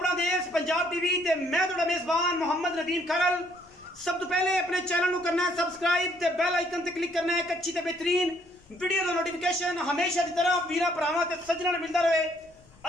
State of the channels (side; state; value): left; noise; rumble, 28 dB below the sound